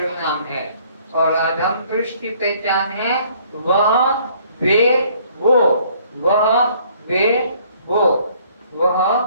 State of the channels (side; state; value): both; inverted; correlation -0.61